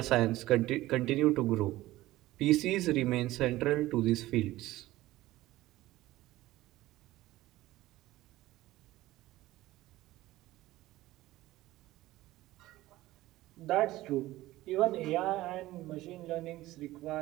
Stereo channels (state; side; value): quieter; left; 16.9 dB